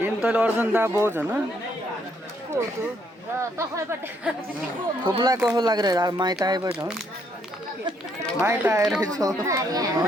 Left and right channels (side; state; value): both; normal; correlation 0.71